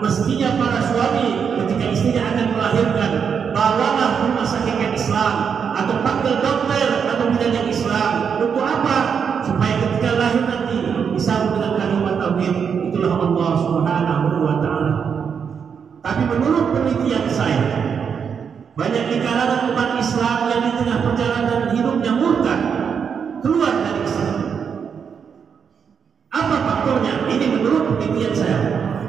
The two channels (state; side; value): quieter; left; 6.8 dB